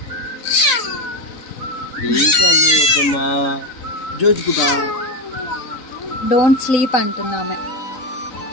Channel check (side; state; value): right; late; 4.0 ms